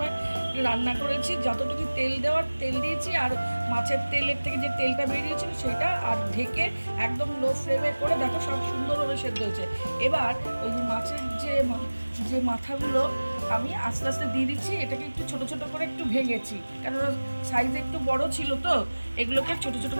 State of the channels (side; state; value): both; inverted; correlation -1.00